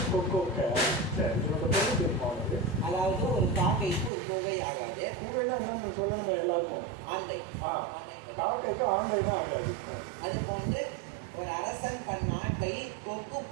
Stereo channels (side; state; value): left; drops out; at 4.1 s